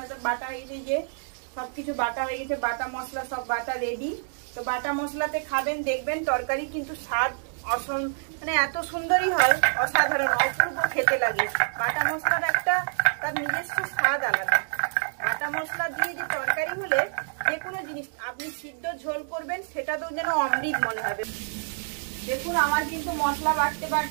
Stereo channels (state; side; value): silent; left; digital silence